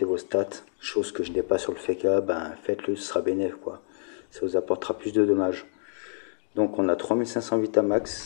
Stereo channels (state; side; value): silent; right; digital silence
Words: vos stats, chose que je n'ai pas sur le FK, faites-le, ce sera bénéf quoi. Ça vous apportera plus de dommages. Donc on a 3500